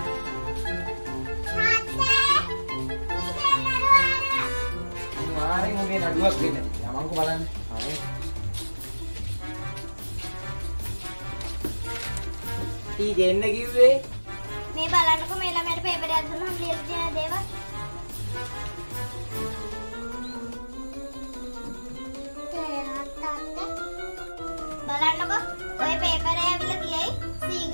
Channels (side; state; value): both; inverted; correlation -1.00